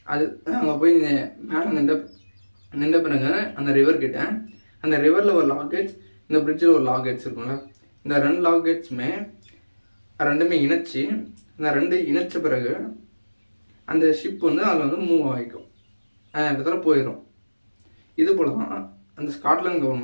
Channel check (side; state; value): both; inverted; correlation -1.00